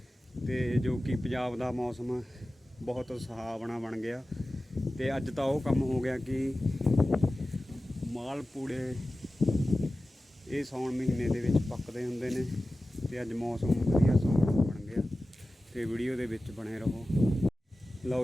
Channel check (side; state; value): both; normal; correlation 0.95